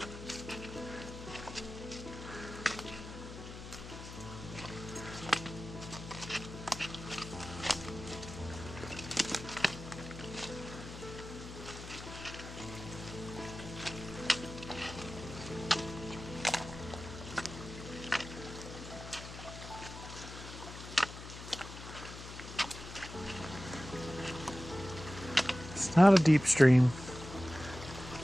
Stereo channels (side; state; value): left; noise; hum, 12 dB below the sound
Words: It's not a deep stream.